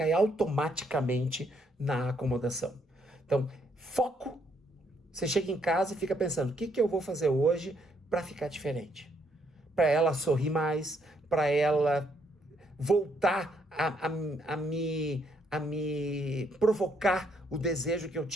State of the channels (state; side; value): normal; both; correlation 0.72